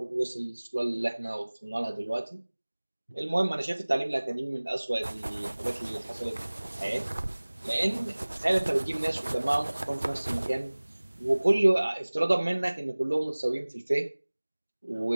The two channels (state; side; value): inverted; both; correlation -1.00